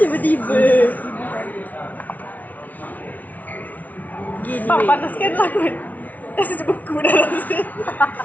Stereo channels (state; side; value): late; right; 0.075 ms